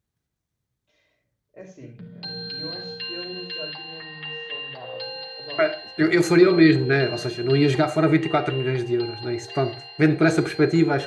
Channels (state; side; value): identical; both; correlation 1.00